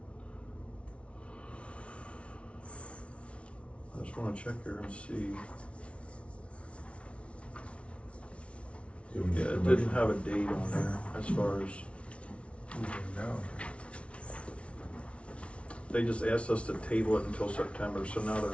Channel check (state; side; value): late; right; 0.061 ms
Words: I just wanna check here and see. Yeah, it didn't have a date on there as far as, they just asked us to table it until September, so now